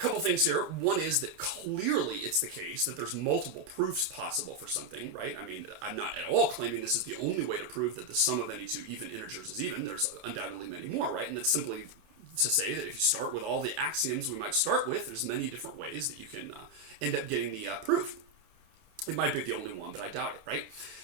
things here. One is that clearly it's the case that there's multiple proofs possible for something, right? I mean, I'm not at all claiming this is the only way to prove that the sum of any two even integers is even. There's undoubtedly many more, right? And that's simply to say that if you start with all the axioms we might start with, there's many different ways that you can end up getting the proof. It might be the only one, but I doubt it, right?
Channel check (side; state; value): left; late; 28 ms